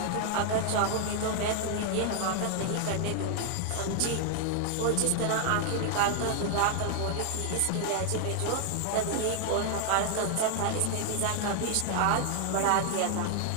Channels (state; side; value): different; both; correlation 0.00